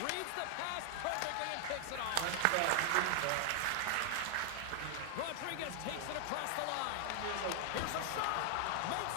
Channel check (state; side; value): different; both; correlation 0.00